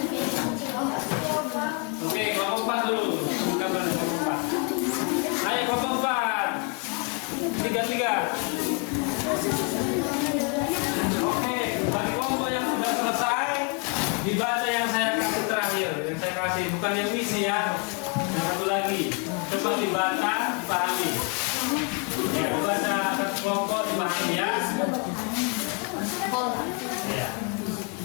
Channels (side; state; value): right; quieter; 32.9 dB